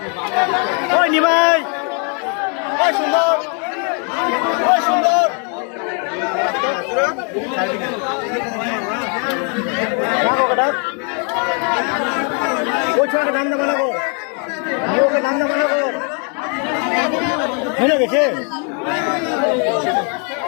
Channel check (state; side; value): quieter; right; 38.7 dB